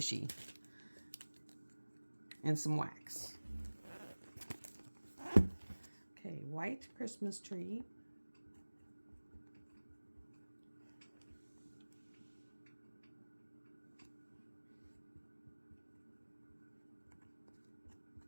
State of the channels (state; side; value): inverted; both; correlation -1.00